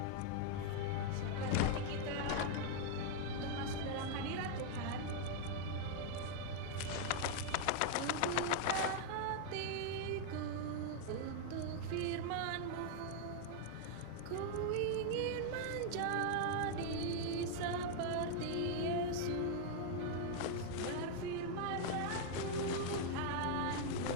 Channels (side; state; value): both; different; correlation 0.00